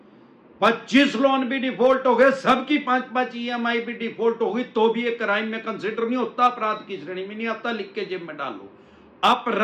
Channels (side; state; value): both; identical; correlation 1.00